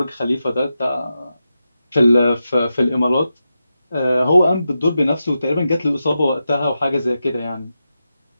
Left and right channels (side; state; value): both; inverted; correlation -0.89